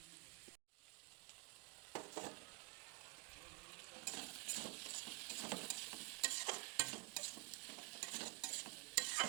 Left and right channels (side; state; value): left; quieter; 27.0 dB